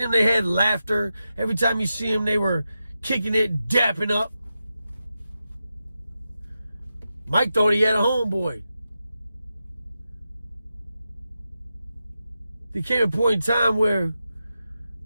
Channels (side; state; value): both; inverted; correlation -0.89